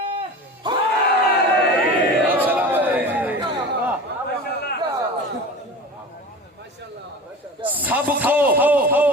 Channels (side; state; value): both; normal; correlation 0.34